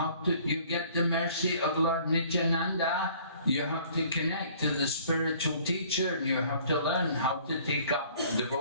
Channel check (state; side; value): inverted; both; correlation -0.55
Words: do you get the mercy of Lord Nityananda? You have to connect to the spiritual teacher and you have to learn how to take up